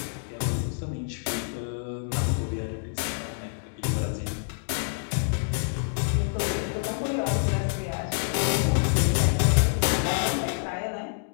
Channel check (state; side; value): silent; right; digital silence